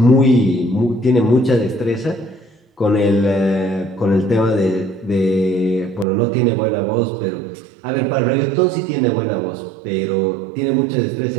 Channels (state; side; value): drops out; left; at 6.1 s